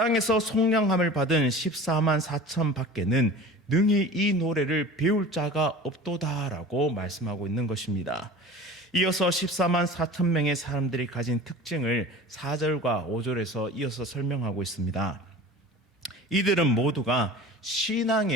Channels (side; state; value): both; normal; correlation 0.39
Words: 속량함을 받은 14만 4천 밖에는 능히 이 노래를 배울 자가 없도다라고 말씀하고 있는 것입니다. 이어서 14만 4천 명의 사람들이 가진 특징을 4절과 5절에서 이어서 설명하고 있습니다. 이들은 모두가